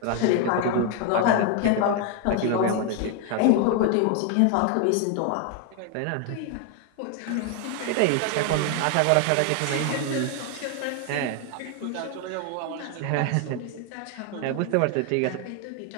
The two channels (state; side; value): different; both; correlation 0.01